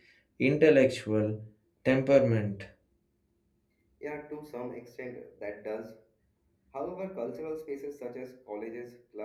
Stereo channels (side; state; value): both; identical; correlation 1.00